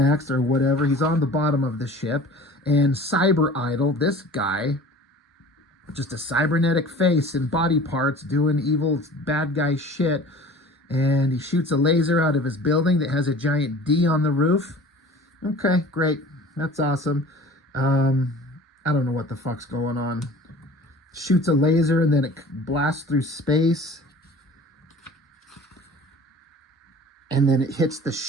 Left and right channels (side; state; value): both; normal; correlation 0.43